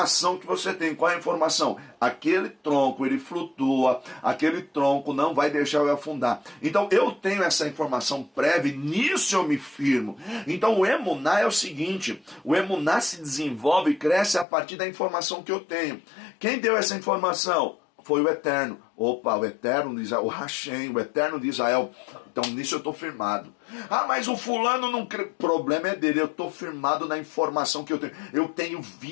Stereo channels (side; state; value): right; drops out; at 14.5 s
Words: que você tem. Qual é a informação? Aquele tronco, ele flutua, aquele tronco não vai deixar eu afundar. Então eu tenho essa informação prévia e nisso eu me firmo. Então o emuná é o seguinte, o emuná se desenvolve e cresce a partir da informação que eu tenho. Quem deu essa informação? Foi o Eterno. Opa, o Eterno de Israel, o Hashem, o Eterno de Israel. Então nisso eu estou firmado. Mas o fulano não crê. O problema é dele, eu estou firmado na informação que eu tenho. Eu tenho